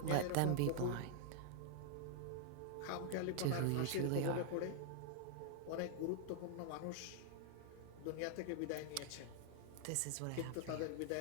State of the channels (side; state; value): both; different; correlation 0.00